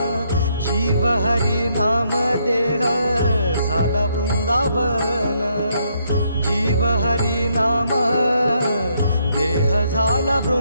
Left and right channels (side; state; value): both; inverted; correlation -0.73